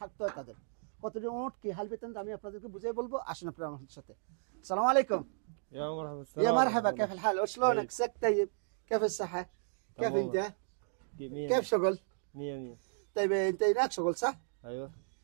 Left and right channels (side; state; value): left; silent; digital silence